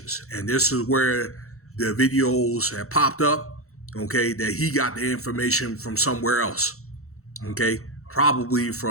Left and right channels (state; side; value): late; right; 0.64 ms